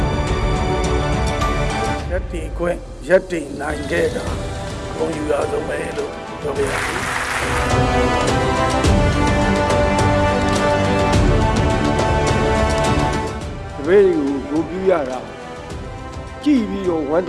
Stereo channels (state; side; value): identical; both; correlation 1.00